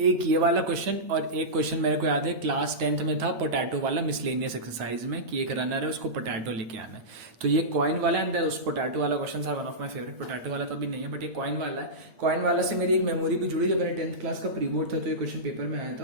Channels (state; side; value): late; left; 8.7 ms